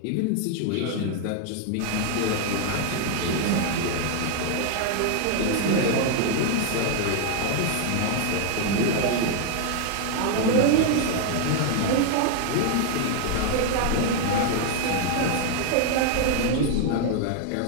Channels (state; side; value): different; both; correlation 0.00